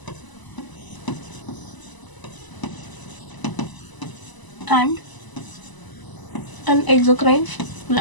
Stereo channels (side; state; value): right; late; 1.0 ms